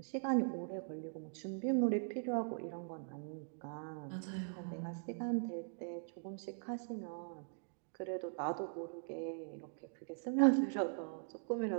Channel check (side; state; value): left; silent; digital silence